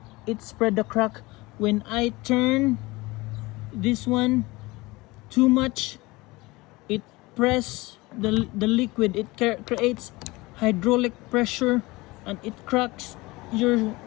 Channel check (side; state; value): right; quieter; 22.0 dB